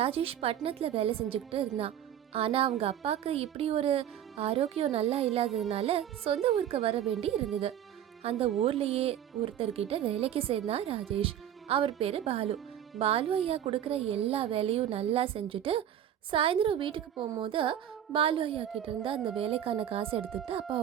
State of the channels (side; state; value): left; quieter; 10.5 dB